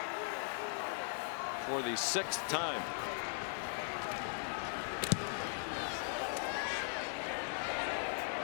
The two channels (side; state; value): right; silent; 52 dB below the other